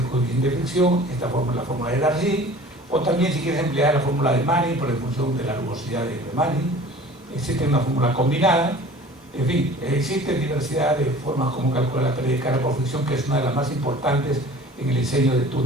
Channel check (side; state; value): both; normal; correlation 0.45